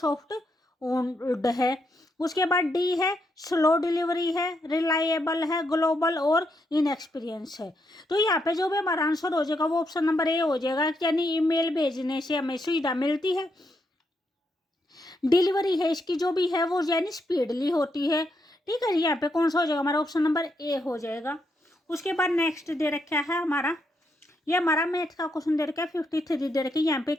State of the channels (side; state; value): both; normal; correlation 0.79